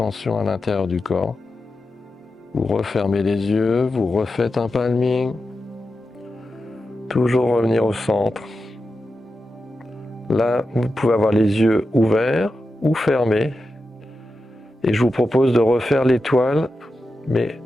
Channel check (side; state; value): both; normal; correlation 0.90